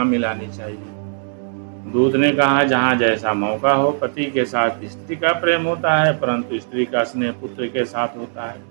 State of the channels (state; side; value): silent; left; 63 dB below the other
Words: मिलानी चाहिए? दूत ने कहा, जहाँ जैसा मौका हो। पति के साथ स्त्री का प्रेम होता है, परंतु स्त्री का स्नेह पुत्र के साथ होता है।